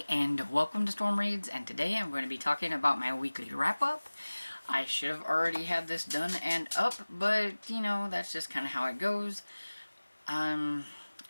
and welcome to Storm Reads, and today I'm going to be talking about my weekly wrap-up. I should have already had this done and up, but you know, that's just kind of how it goes.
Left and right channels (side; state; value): both; inverted; correlation -1.00